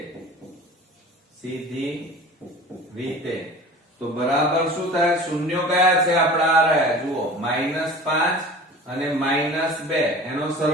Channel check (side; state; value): both; normal; correlation 0.40